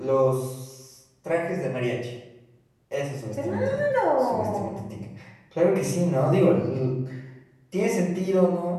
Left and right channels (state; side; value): identical; both; correlation 1.00